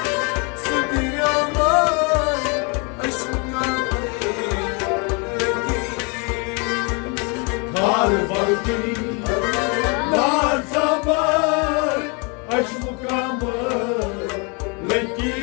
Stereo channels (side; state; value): right; quieter; 32.9 dB